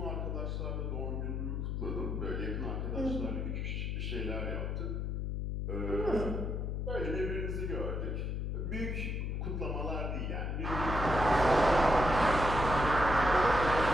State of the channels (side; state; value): left; noise; hum, 2 dB below the sound